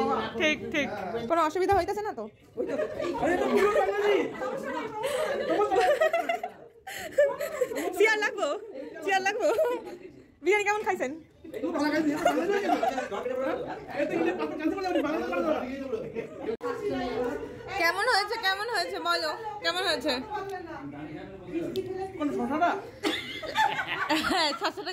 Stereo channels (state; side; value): identical; both; correlation 1.00